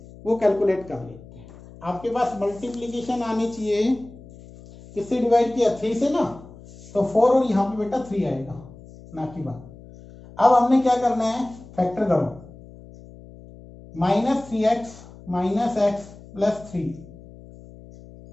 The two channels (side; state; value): left; noise; hum, 19 dB below the sound